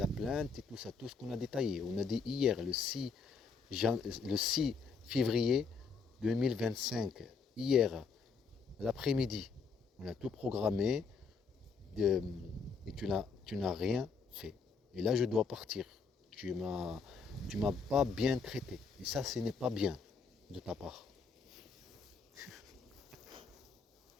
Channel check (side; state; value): right; quieter; 5.1 dB